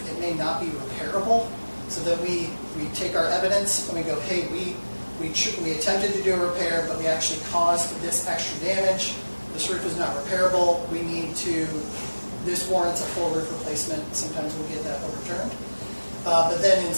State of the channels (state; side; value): inverted; both; correlation -1.00